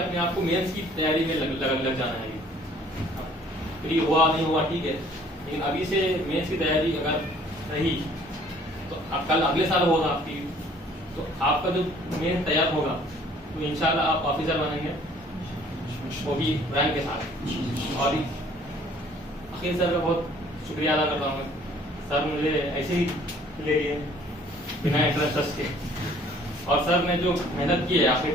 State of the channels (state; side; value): normal; both; correlation 0.57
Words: आप को मेंस की तैयारी में लग जाना है। प्री हुआ नहीं हुआ ठीक है, लेकिन अभी से मेंस की तैयारी अगर रही तो कल अगले साल होगा आपकी, तो आपका जो मेन तैयार होगा तो इंशाल्लाह आप ऑफिसर बनेंगे, वो भी रैंक के साथ। और अखिल सर का बहुत शुक्रिया अदा करता हूँ, सर मुझे ऐसे ही ले लिए बिना इंटरेस्ट के, और सर ने जो मेहनत की है आखिरी